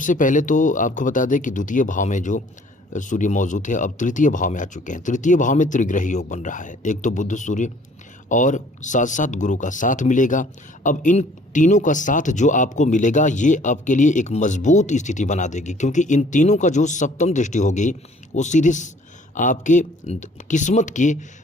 पहले तो आपको बता दें कि द्वितीय भाव में जो सूर्य मौजूद है अब तृतीय भाव में आ चुके हैं। तृतीय भाव में त्रिग्रही योग बन रहा है। एक तो बुध सूर्य और साथ साथ गुरु का साथ मिलेगा। अब इन तीनों का साथ जो आपको मिलेगा ये आपके लिए एक मजबूत स्थिति बना देगी, क्योंकि इन तीनों का जो सप्तम दृष्टि होगी वो सीधे आपके किस्मत के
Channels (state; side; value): normal; both; correlation 0.56